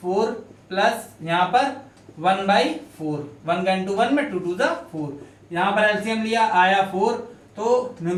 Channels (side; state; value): both; identical; correlation 1.00